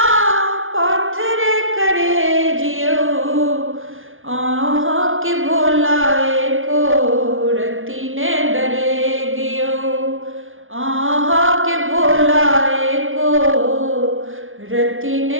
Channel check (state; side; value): late; left; 0.58 ms